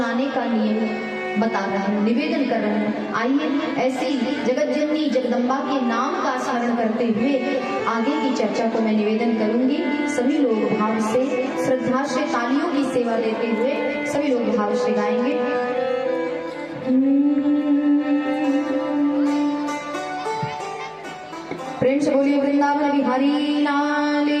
का नियम बता रहे हैं, निवेदन कर रहे हैं। आइए ऐसी जगत जननी जगदम्बा के नाम का स्मरण करते हुए आगे की चर्चा को मैं निवेदन करूंगी। सभी लोग भाव से, श्रद्धा से, तालियों की सेवा देते हुए सभी लोग भाव से गाएंगे। प्रेम से बोलिए वृंदावन बिहारी लाल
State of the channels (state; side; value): identical; both; correlation 1.00